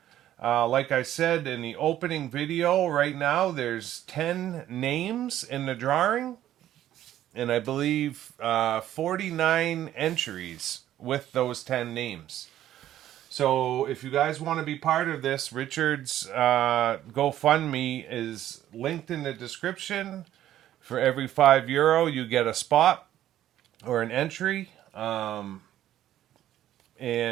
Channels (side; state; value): left; quieter; 12.4 dB